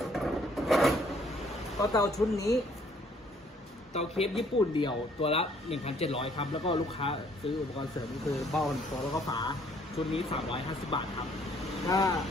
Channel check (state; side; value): normal; both; correlation 0.63